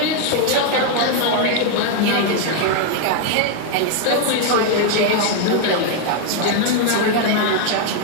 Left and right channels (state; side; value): different; both; correlation 0.01